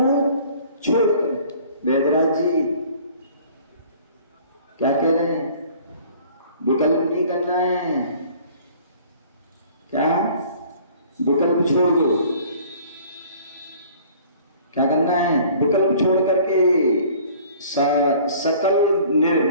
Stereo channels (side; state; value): both; inverted; correlation -0.51